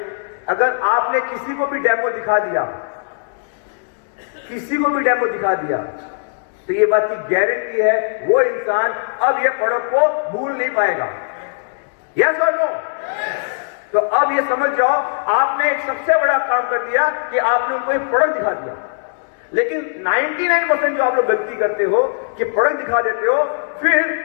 अगर आपने किसी को भी डेमो दिखा दिया, किसी को भी डेमो दिखा दिया, तो ये बात की गारंटी है वो इंसान अब ये प्रोडक्ट को भूल नहीं पाएगा। यस और नो? तो अब ये समझ जाओ, आपने एक सबसे बड़ा काम कर दिया कि आपने उनको एक प्रोडक्ट दिखा दिया। लेकिन 99% जो आप लोग गलती करते हो कि प्रोडक्ट दिखा देते हो, फिर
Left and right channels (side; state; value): right; silent; digital silence